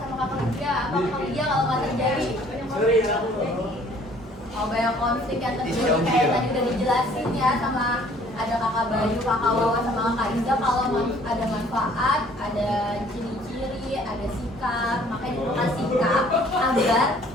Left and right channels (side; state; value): both; normal; correlation 0.57